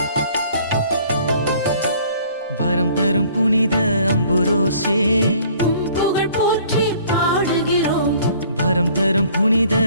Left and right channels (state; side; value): inverted; both; correlation -0.56